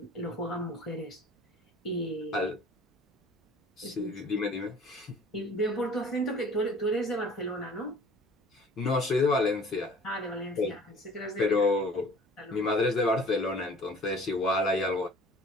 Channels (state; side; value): normal; both; correlation 0.49